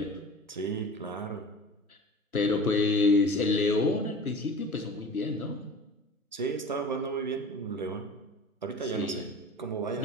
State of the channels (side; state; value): both; normal; correlation 0.39